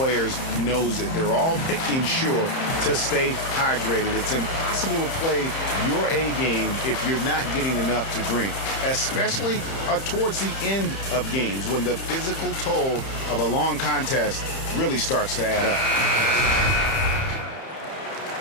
knows it. They're all making sure to stay hydrated. It's impossible to play your A game if you're not getting enough to drink, especially towards the end of games when the physical toll of a long contest really starts to add up.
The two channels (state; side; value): late; right; 30 ms